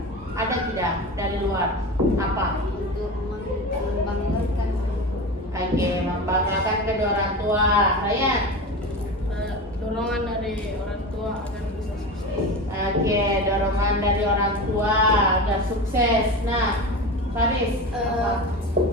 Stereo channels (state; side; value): normal; both; correlation 0.27